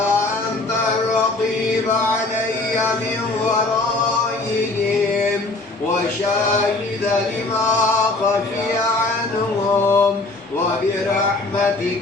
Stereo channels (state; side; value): quieter; right; 3.1 dB